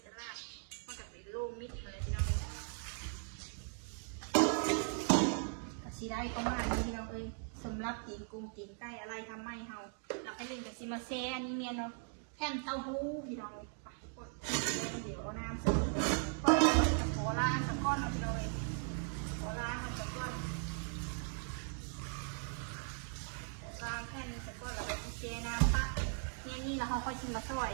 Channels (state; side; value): silent; left; 52 dB below the other